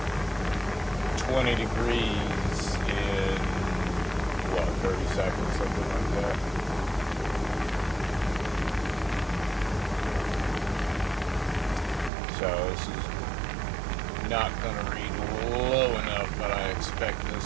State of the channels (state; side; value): drops out; left; at 12.1 s